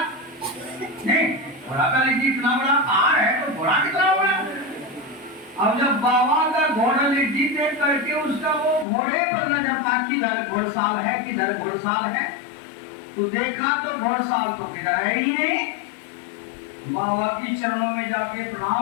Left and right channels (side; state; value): right; drops out; at 8.8 s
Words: नहीं घोड़ा का लिट्टी इतना बड़ा पहाड़ है तो घोड़ा कितना बड़ा। अब जब बाबा का घोड़ा लिट्टी देख करके उसका वो घोड़े पर नजर था, किधर घोड़साल है, किधर घोड़साल है, तो देखा तो घोड़साल तो किधर है ही नहीं। बाबा की चरणों में जाके